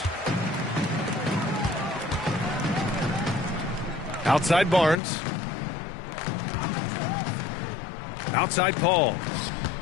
Outside Barnes. Outside Paul.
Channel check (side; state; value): right; drops out; at 5.0 s